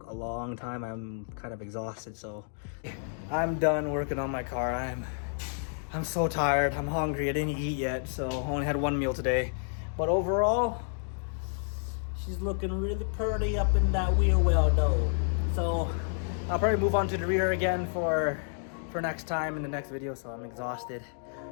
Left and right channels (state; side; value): silent; right; digital silence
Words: a long time. I'm kind of exhausted, so I'm done working on my car. I'm so tired. I'm hungry. I didn't eat yet, so I only had one meal today. But overall, she's looking really pretty up in that wheel well though. So I'll probably move on to the rear again for next time in the next video, so I'm exhausted.